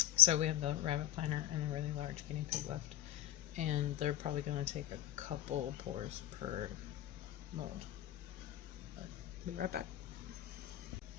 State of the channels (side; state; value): right; quieter; 13.6 dB